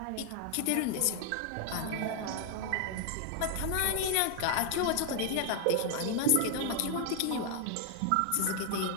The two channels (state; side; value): different; both; correlation 0.00